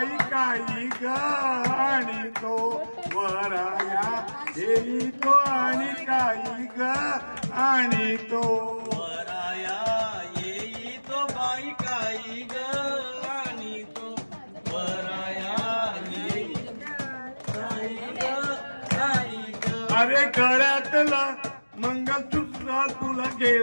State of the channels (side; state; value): both; inverted; correlation -1.00